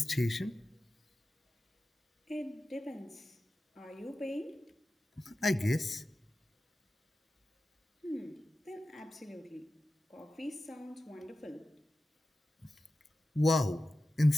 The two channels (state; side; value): normal; both; correlation 0.93